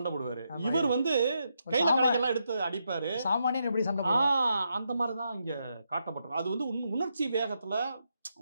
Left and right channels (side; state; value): both; inverted; correlation -0.82